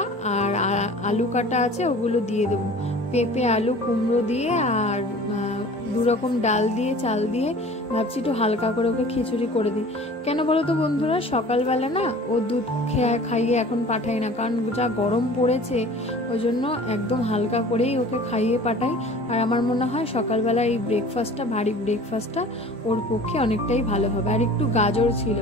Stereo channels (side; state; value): both; normal; correlation 0.44